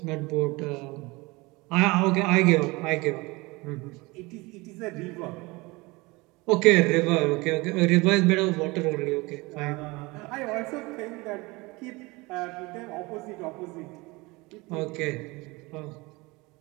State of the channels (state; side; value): quieter; left; 23.8 dB